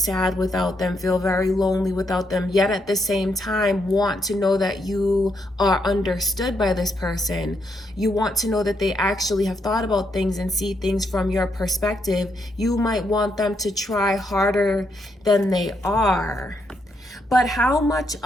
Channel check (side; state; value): both; normal; correlation 0.78